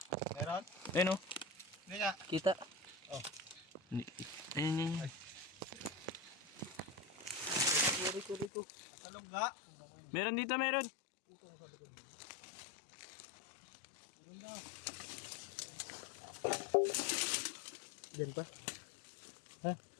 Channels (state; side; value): drops out; right; at 8.5 s